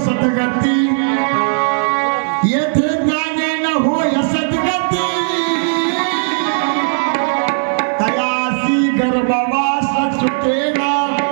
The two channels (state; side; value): silent; left; digital silence